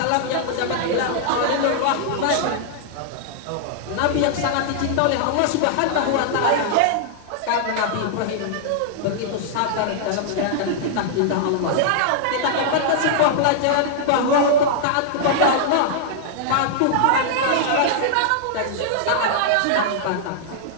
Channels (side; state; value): both; different; correlation -0.01